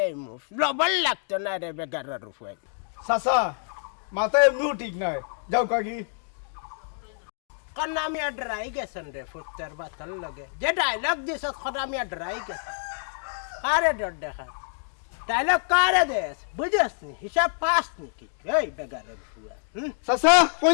লবণ লাগতো না রে বেগারের ফুয়ান। চাচা মাথা এমনিও ঠিক নাই, যাও কাকি। খনামিয়া ডরাই গেছেন রে ফুটার বাতার লগে। যে ডায়লগ দিছ খনামিয়া ডরাই গেছে। কারে ডর দেখা? ডায়লগ কারে দেশ বুঝস নি? হিসাব পাস নাকি? এই বেগারের ফুয়া। চাচা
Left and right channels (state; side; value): silent; right; digital silence